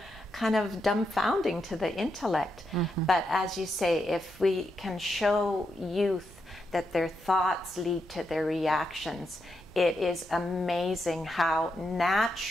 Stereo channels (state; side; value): normal; both; correlation 0.83